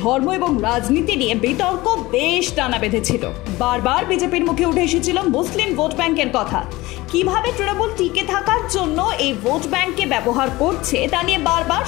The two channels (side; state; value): right; quieter; 19.8 dB